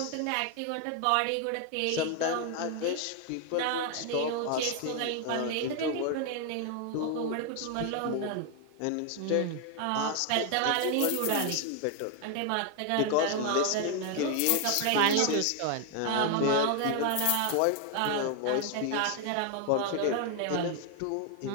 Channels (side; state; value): both; different; correlation 0.00